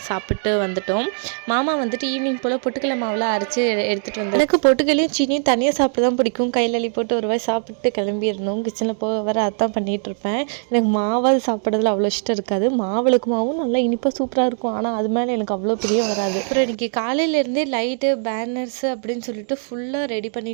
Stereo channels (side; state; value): left; silent; 65 dB below the other